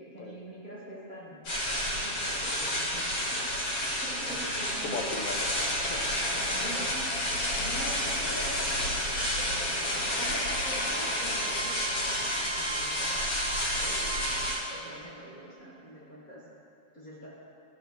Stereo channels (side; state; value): right; late; 7.3 ms